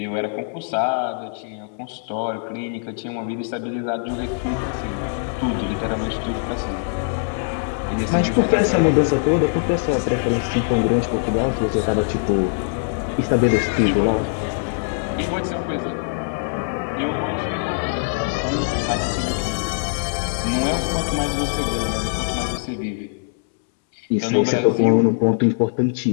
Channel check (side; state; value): right; silent; 64 dB below the other